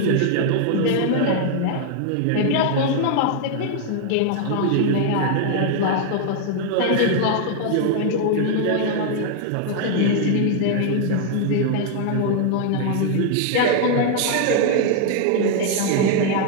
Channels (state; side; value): different; both; correlation 0.00